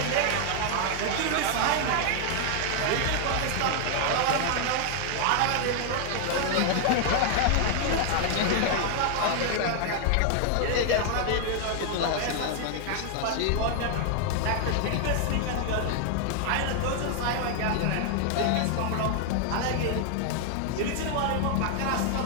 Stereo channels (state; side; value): different; both; correlation 0.00